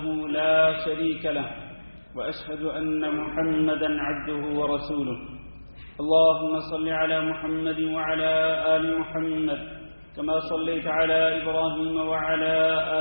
لا شريك له وأشهد أن محمدا عبده ورسوله اللهم صل على محمد وعلى آل محمد كما صليت على إبراهيم وعلى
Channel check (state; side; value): inverted; both; correlation -1.00